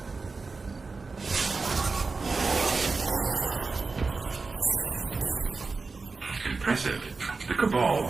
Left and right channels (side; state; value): left; quieter; 4.1 dB